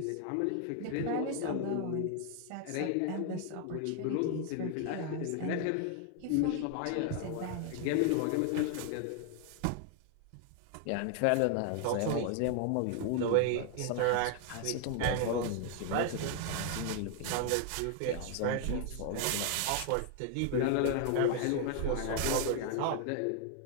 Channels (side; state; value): both; different; correlation 0.00